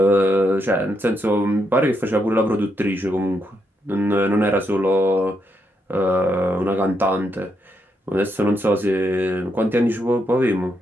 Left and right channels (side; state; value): both; normal; correlation 0.79